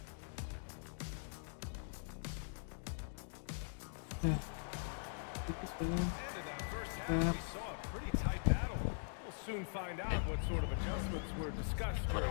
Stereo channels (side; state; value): right; silent; digital silence